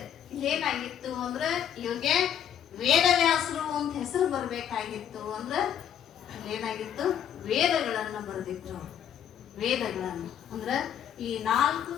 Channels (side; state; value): right; quieter; 9.4 dB